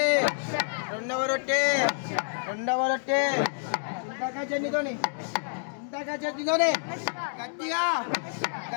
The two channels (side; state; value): right; silent; digital silence